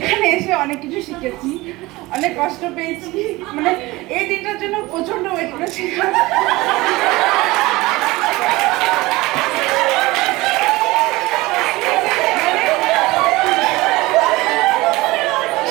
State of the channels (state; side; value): quieter; left; 20.6 dB